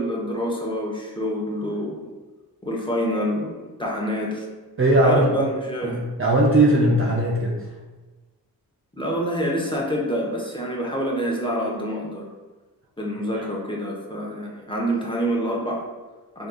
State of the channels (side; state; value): both; normal; correlation 0.34